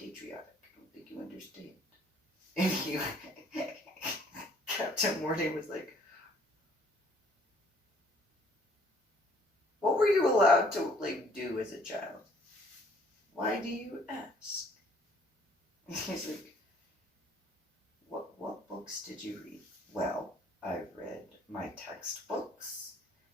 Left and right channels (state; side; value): normal; both; correlation 0.60